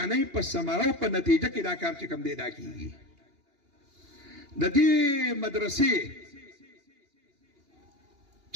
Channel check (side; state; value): left; late; 2.8 ms